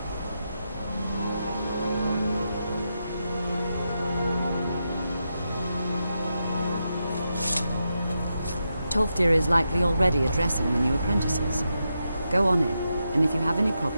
Tolfdir is likely already addressing the new apprentices. Go on in, and if you have any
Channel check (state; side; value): inverted; both; correlation -0.86